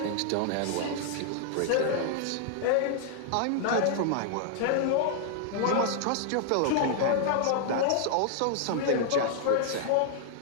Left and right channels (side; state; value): both; different; correlation 0.00